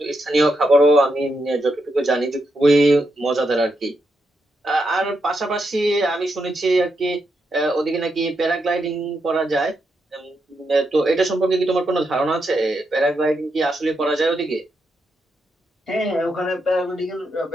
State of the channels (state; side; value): normal; both; correlation 0.83